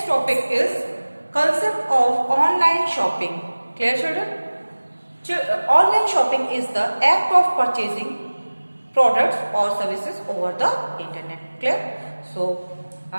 topic is concept of online shopping. Clear, children? Online shopping is the act of purchasing products or services over the internet. Clear? So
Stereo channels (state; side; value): inverted; both; correlation -1.00